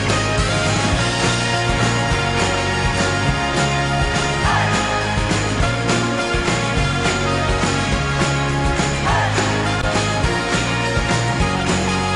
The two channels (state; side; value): identical; both; correlation 1.00